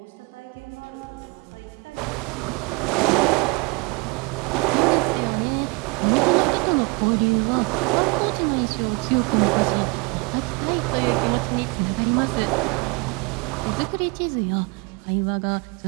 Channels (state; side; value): quieter; left; 29.2 dB